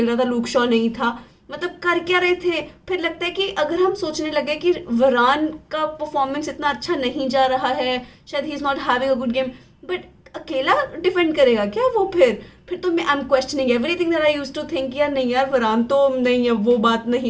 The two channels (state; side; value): identical; both; correlation 1.00